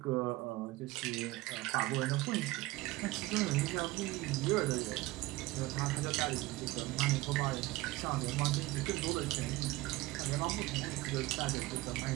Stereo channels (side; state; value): left; quieter; 19.6 dB